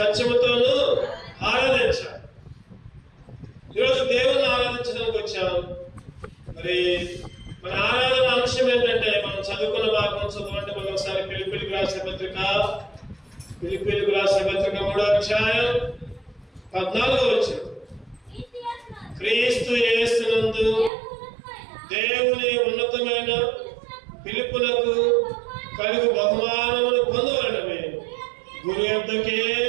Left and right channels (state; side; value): drops out; left; at 20.9 s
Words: ఆరాధించాలి. ఈరోజు దేవుని ఆరాధించడానికి వచ్చాం. మరి మన ఆరాధన అంశం ఏంటంటే, మనం చదువుకున్న భాగం చదవండి. మనం ఒకసారి ఫిలిప్పీయులకు రాసిన పత్రిక 3వ అధ్యాయం 14వ వచనం. క్రీస్తు యేసునందు దేవుని ఉన్నతమైన పిలుపునకు కలుగు బహుమానమును పొందవలనని గురు యొద్దకే